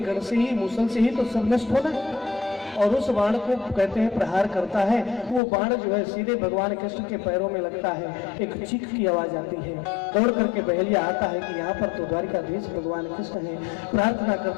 से ही, मूसल से ही तो सब नष्ट होना है, और उस बाण को कहते हैं प्रहार करता है। वो बाण जो है सीधे भगवान कृष्ण के पैरों में लगता है। एक चीख की आवाज आती है। दौड़ करके बहेलिया आता है कि यहाँ पर तो द्वारिकाधीश भगवान कृष्ण है। प्रार्थना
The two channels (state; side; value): drops out; right; at 5.4 s